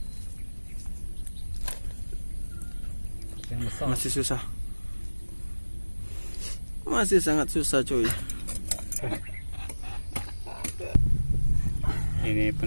Yang besar. Masih susah. Masih sangat susah cuy. Ini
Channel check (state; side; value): inverted; both; correlation -1.00